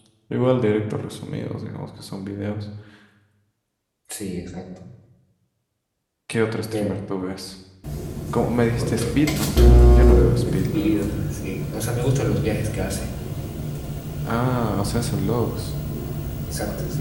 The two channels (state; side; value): identical; both; correlation 1.00